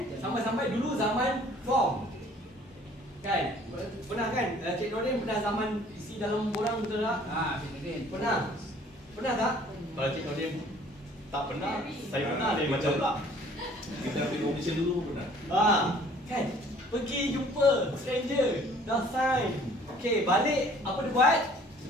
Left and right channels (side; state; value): both; normal; correlation 0.55